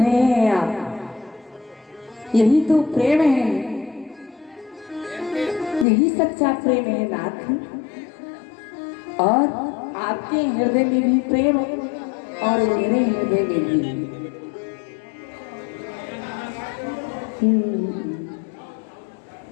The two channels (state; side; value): drops out; right; at 5.9 s